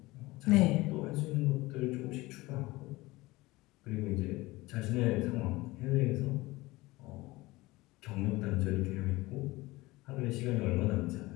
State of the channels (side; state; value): right; quieter; 20.5 dB